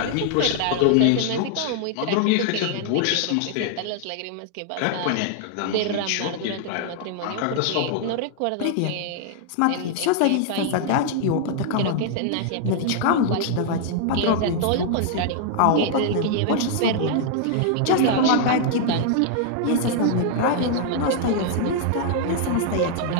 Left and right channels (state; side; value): different; both; correlation -0.01